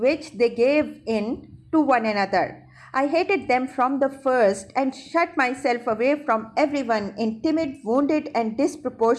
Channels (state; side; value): identical; both; correlation 1.00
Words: they gave in to one another. I hated them from the first and shut myself away from everyone in timid, wounded, and